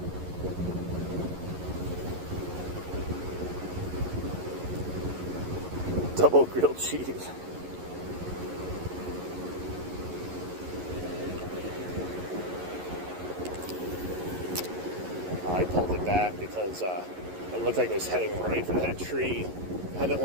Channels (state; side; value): late; left; 11 ms